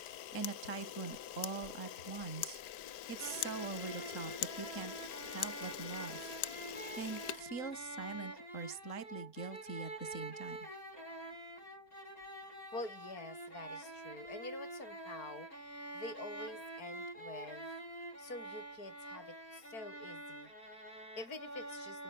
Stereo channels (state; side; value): late; right; 4.4 ms